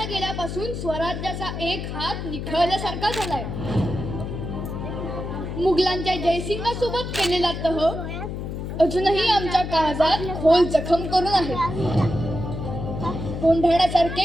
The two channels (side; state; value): left; noise; hum, 6 dB below the sound